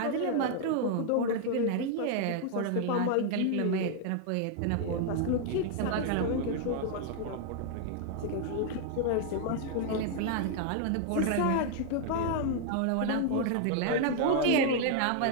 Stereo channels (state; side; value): different; both; correlation 0.00